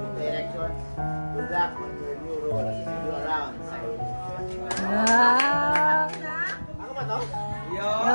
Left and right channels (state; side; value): inverted; both; correlation -1.00